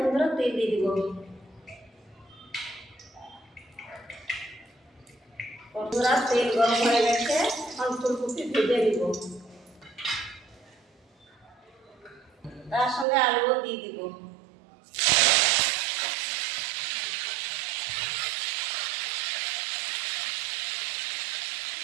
তেল দিয়ে দিব। বন্ধুরা তেল গরম হয়ে গেছে, এখন ফুলকপি ভেজে দিব। তার সঙ্গে আলুও দিয়ে দিব।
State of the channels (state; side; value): drops out; left; at 13.1 s